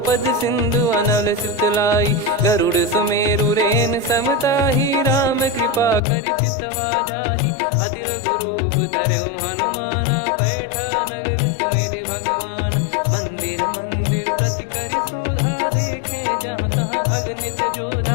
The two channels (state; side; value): drops out; right; at 6.0 s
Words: सिंधु अनल सितलाई। गरुड़ सुमेरु रेन समताहि, राम कृपा करि चितवा जाहि। अति लघु रूप धरऊ हनुमाना, पैठा नगर सुमेरे भगवान। मंदिर मंदिर प्रति करि शोधा, देखे जहाँ तहाँ अगणित